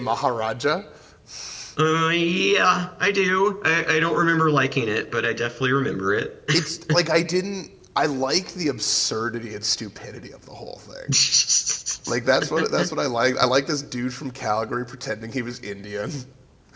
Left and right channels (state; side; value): identical; both; correlation 1.00